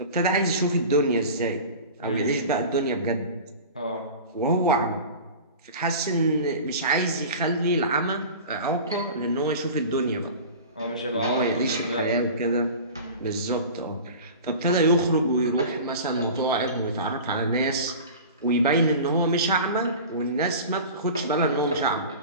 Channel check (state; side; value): inverted; both; correlation -0.36